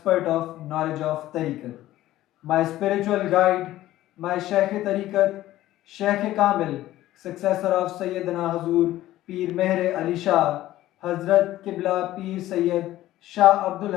of knowledge of Tariqat. My spiritual guide, my Shaykh Tariqat, Shaykh Kamil, successor of Sayyidina Hazur, Peer Meher Ali Shah, Hazrat Qibla Peer Syed, Shah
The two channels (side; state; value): right; quieter; 14.8 dB